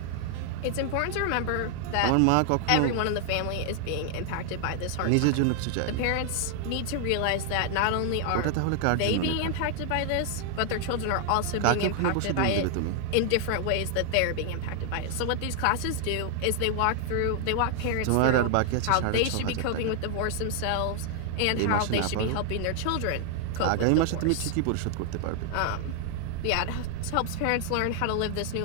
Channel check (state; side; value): different; both; correlation 0.00